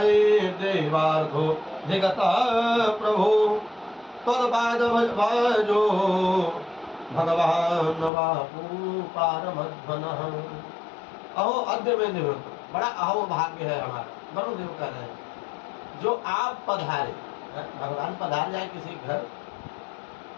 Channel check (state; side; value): drops out; right; at 8.1 s